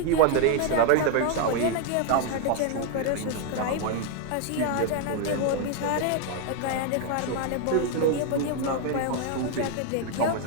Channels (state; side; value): different; both; correlation 0.00